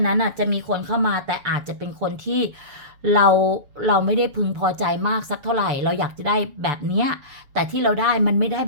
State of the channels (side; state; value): left; late; 6.8 ms